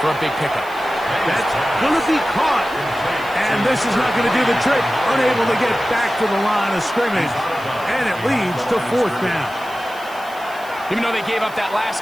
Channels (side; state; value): right; noise; hiss, 21 dB below the sound